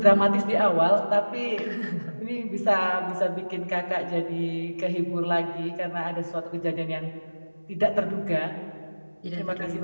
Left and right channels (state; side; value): inverted; both; correlation -1.00